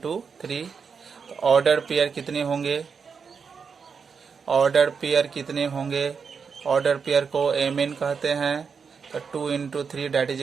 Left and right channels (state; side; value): quieter; left; 5.9 dB